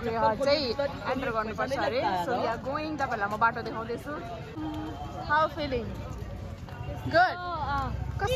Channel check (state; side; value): identical; both; correlation 1.00